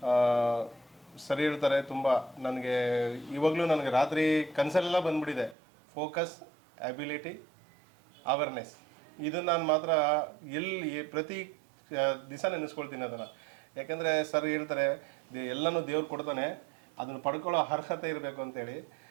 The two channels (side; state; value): left; drops out; at 5.6 s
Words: ಸರಿ ಹೇಳ್ತಾರೆ ತುಂಬ. ನನಗೆ ಇವಾಗಲೂ ನನಗೆ ರಾತ್ರಿ ಕನಸಲ್ಲೆಲ್ಲ ಬಂದ್ಬಿಟ್ಟಿದೆ. Focus, ability, awareness. ಇದು ನಾನು ಮಾತ್ರ ಪ್ರತಿ ದಿವಸ ನೆನೆಸ್ಕೊಳ್ತೀನಿ ಅದನ್ನು. ಯಾಕೆಂದರೆ ಸರ್ ಹೇಳ್ತಾರೆ ಎಲ್ಲನೂ ದೇವ್ರು ಕೊಡ್ತಾನೆ, ಅದನ್ನು ಪಡ್ಕೊಳ್ಳೋ ಅರ್ಹತೆ ಇರಬೇಕು ಅಂತೇಳಿ.